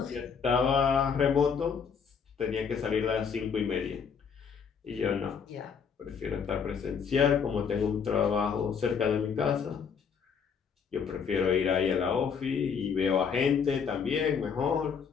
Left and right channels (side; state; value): right; quieter; 6.5 dB